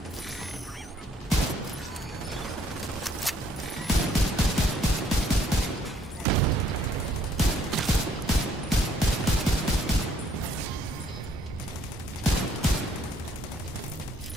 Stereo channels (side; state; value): both; normal; correlation 0.65